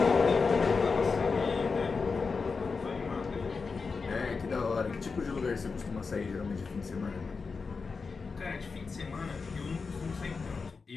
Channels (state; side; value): quieter; right; 4.7 dB